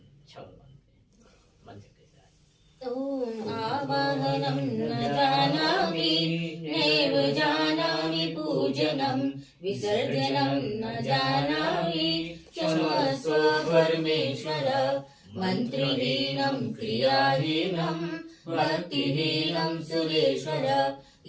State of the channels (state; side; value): identical; both; correlation 1.00